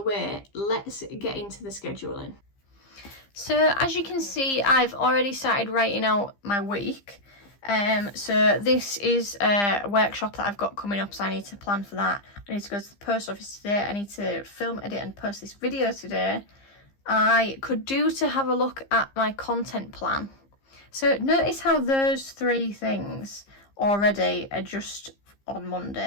let's get into the scheduling. So as you can see, I've already started writing out my week. So this is a workshop that I've got coming up, so I need to plan for that. I need to go to the post office today. I need to film, edit and post this video today. I could do to have a look at my content plan. So notice how those 3 things already are just on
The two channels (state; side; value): late; right; 15 ms